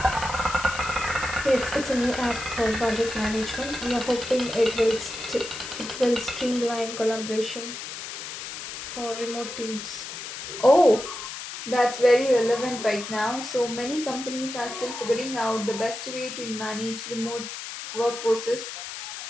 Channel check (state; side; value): noise; left; hiss, 8 dB below the sound